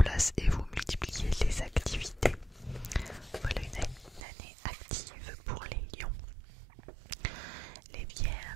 et vous multipliez les activités. Voilà une année active pour les lions. Les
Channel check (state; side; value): drops out; left; at 4.2 s